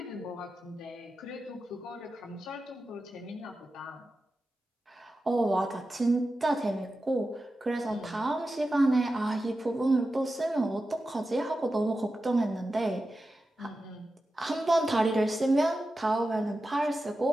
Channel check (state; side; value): normal; both; correlation 0.92